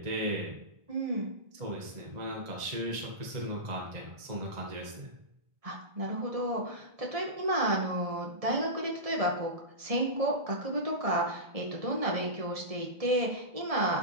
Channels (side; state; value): left; late; 1.7 ms